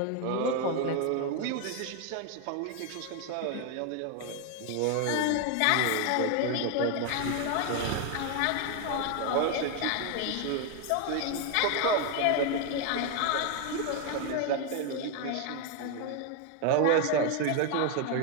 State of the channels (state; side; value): different; both; correlation 0.01